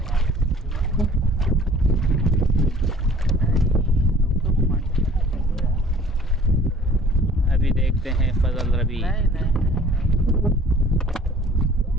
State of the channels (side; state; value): both; normal; correlation 0.52